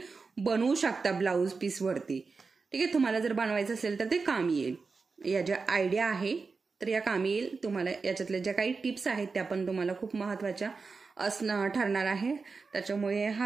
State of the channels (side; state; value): left; quieter; 4.5 dB